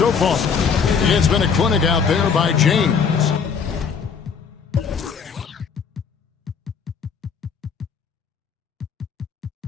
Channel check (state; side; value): quieter; right; 6.2 dB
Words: far. It's been a clinic out there by James.